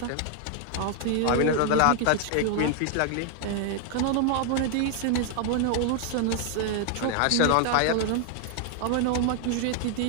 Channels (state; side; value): different; both; correlation 0.00